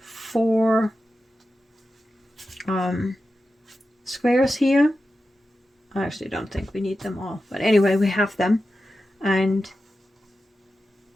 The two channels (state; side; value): normal; both; correlation 0.92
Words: squares here. I actually don't think we need them all, but anyway, we have them, and